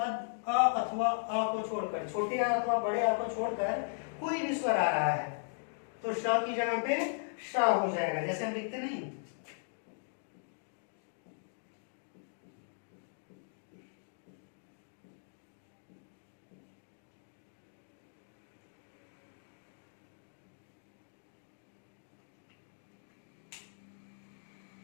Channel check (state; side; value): silent; right; digital silence